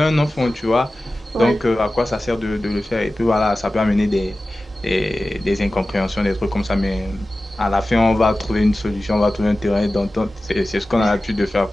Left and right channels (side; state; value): both; normal; correlation 0.95